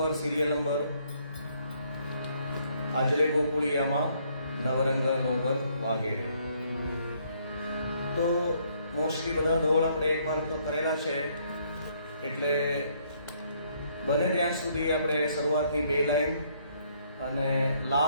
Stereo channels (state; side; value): inverted; both; correlation -0.68